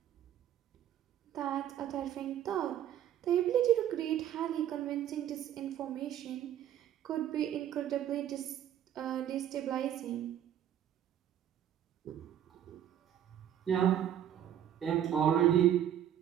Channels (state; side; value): quieter; left; 10.6 dB